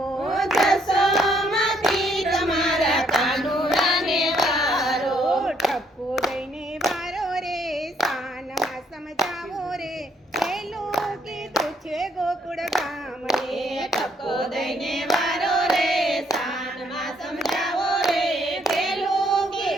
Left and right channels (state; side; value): normal; both; correlation 0.69